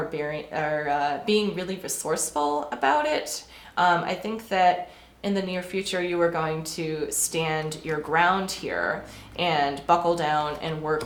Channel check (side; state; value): both; identical; correlation 1.00